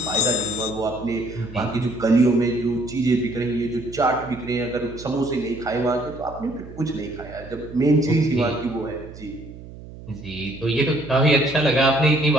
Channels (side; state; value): right; noise; hum, 16 dB below the sound